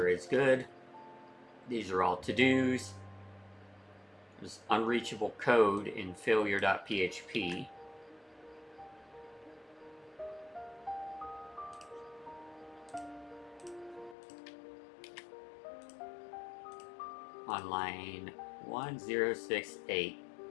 is good. These are all to-dos. There's unreachable code in failure.php. On line 1068.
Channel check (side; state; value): right; drops out; at 14.2 s